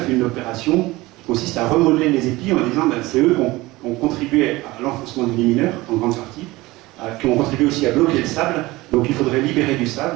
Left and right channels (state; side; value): quieter; left; 20.0 dB